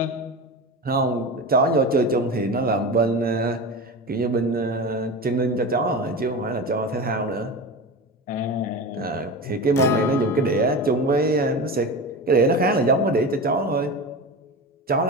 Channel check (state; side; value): normal; both; correlation 0.26